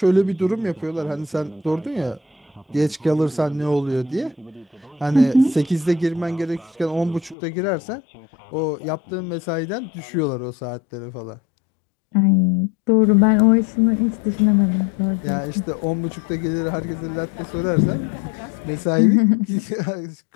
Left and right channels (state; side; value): drops out; right; at 7.4 s